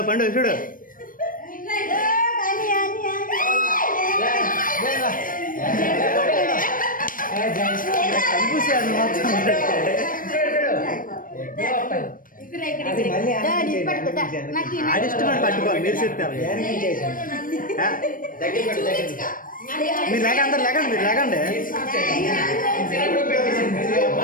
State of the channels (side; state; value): right; late; 0.40 ms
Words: పండు చూడు ఆడిష్టమని పట్టుకోవాలి మీరు చెప్తారు మీరు లేక అందరు లేకండి మీరు లేకండి